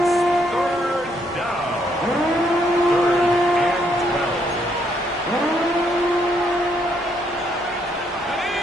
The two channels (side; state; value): both; normal; correlation 0.72